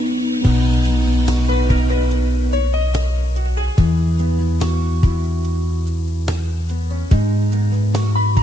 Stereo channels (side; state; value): left; noise; hiss, 27 dB below the sound